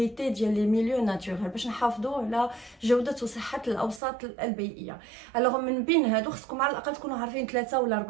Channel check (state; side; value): drops out; left; at 4.0 s